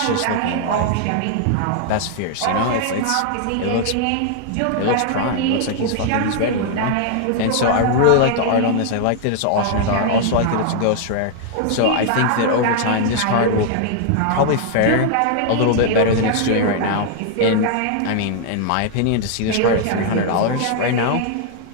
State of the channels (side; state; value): both; different; correlation 0.00